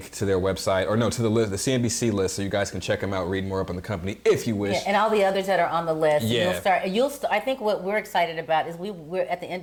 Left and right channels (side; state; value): both; identical; correlation 1.00